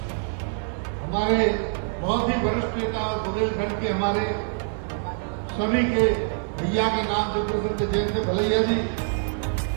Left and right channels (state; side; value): silent; left; digital silence